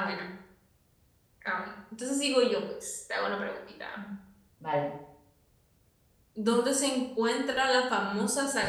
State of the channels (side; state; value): both; identical; correlation 1.00